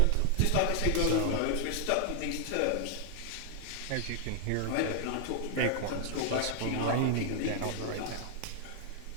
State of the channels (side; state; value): both; different; correlation 0.00